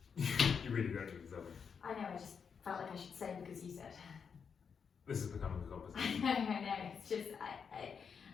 You really don't need to tell me. I know, I just felt like I should say because you said. This is becoming a conversation. I know, it's just,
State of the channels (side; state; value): right; quieter; 6.4 dB